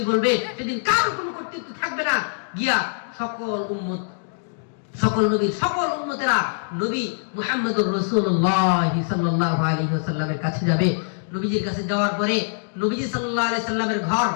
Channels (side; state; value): right; silent; digital silence